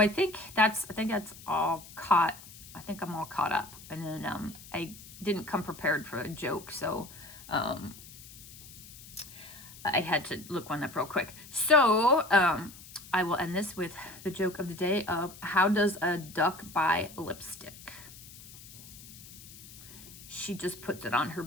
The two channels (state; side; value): noise; left; hiss, 17 dB below the sound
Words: think that's all caught. I think I'm all caught up. And then I didn't come prepared for a joke, so I had to look one up real quick. So I will end this with the joke of the day of how does a duck buy lipstick? She just puts it on her